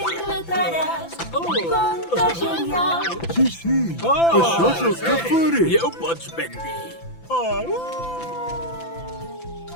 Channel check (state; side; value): late; right; 5.9 ms